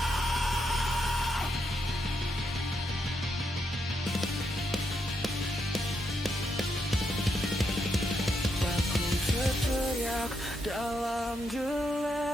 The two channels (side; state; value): both; normal; correlation 0.80